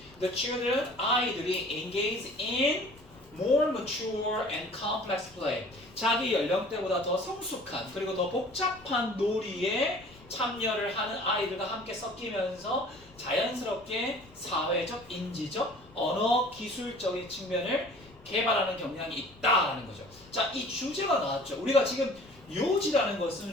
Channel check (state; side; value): noise; left; rumble, 24 dB below the sound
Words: the children, 아이들이 engage in more mature and complex play. 자기 연령대보다 더 성숙한 그리고 더 복잡한 놀이에 참여를 하는 아이들과 함께 섞이면서 자연스럽게 사회적, 인지적, 언어 기술적인 측면을 개발하는 경향이 있다라는 거죠. 자, 이 주제가 나왔죠. 우리가 지금 요지라는